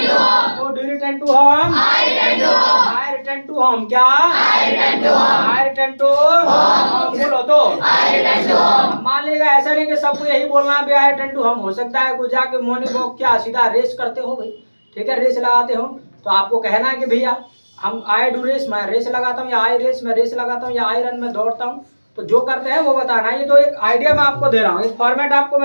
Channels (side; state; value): both; inverted; correlation -1.00